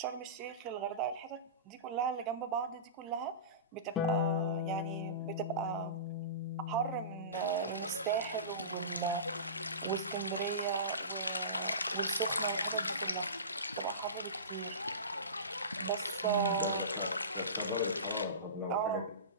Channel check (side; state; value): both; inverted; correlation -0.30